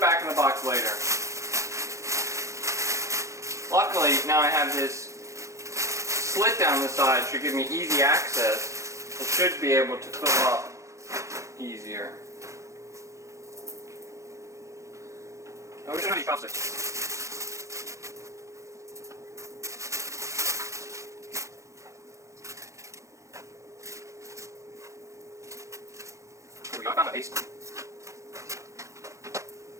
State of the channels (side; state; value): left; late; 0.15 ms